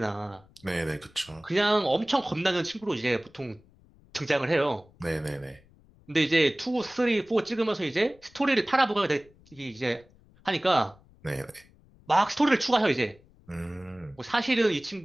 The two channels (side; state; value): left; noise; rumble, 28 dB below the sound